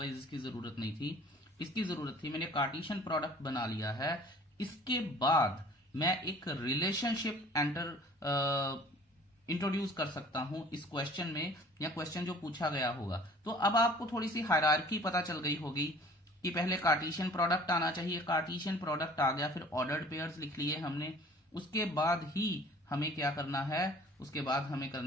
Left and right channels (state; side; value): normal; both; correlation 0.50